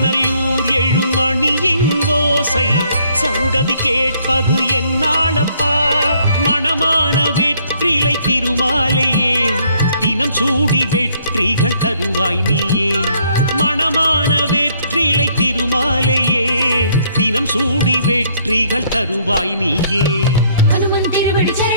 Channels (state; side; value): inverted; both; correlation -0.66